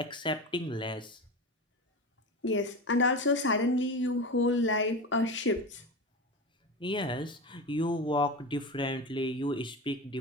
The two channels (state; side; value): normal; both; correlation 0.25